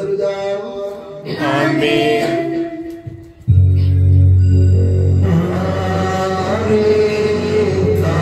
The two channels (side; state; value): both; identical; correlation 1.00